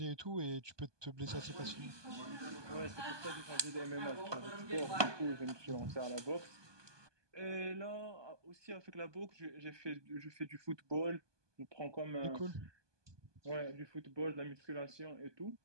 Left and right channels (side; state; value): left; late; 1.2 ms